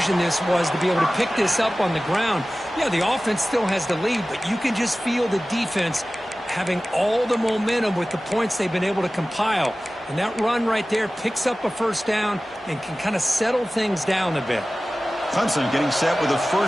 this was to be able to pick this up on the ground. Yeah, the offense still has the lead, but you can just feel the defense having all the momentum with the points they've been able to compile. And that run right there picks up a first down and can kind of settle things down a bit. Clemson getting set with a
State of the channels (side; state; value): both; normal; correlation 0.97